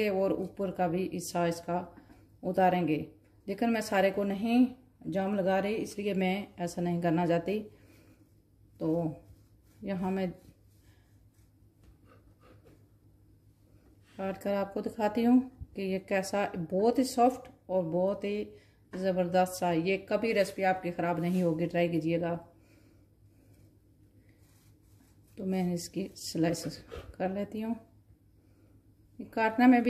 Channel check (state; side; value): identical; both; correlation 1.00